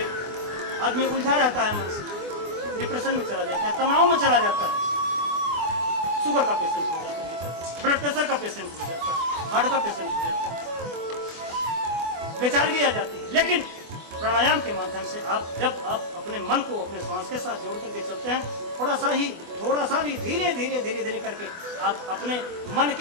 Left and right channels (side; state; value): left; late; 24 ms